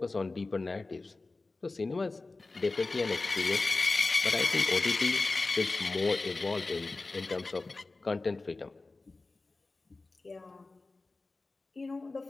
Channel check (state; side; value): quieter; right; 3.4 dB